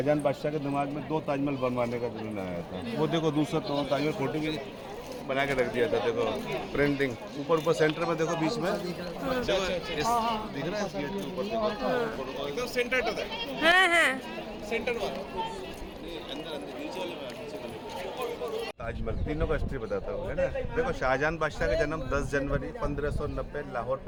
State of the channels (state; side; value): identical; both; correlation 1.00